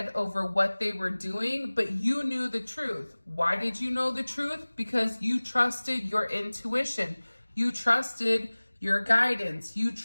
over what they were doing, but you knew the truth. Why did you know the truth? Because you trusted your intuition. You trusted your guidance. You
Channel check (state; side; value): inverted; both; correlation -1.00